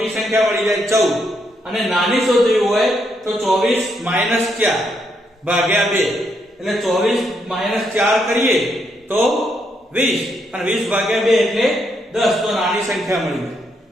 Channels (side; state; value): both; normal; correlation 0.77